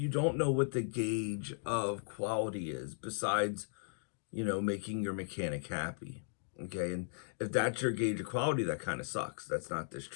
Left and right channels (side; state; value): right; silent; digital silence